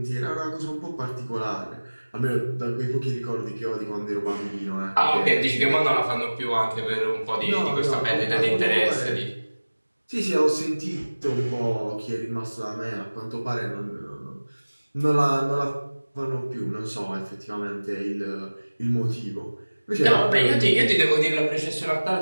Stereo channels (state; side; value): inverted; both; correlation -1.00